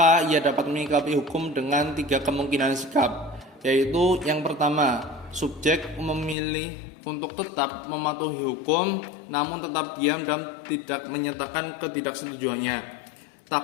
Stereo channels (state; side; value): drops out; right; at 6.4 s